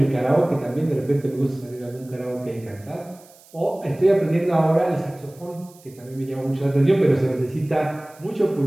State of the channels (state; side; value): noise; right; hiss, 26 dB below the sound